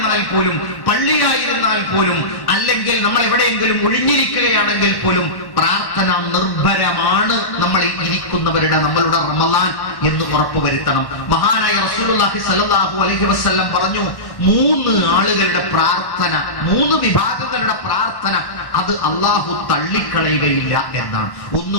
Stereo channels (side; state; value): right; late; 1.1 ms